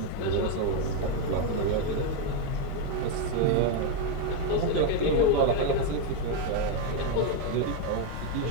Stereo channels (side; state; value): both; different; correlation 0.02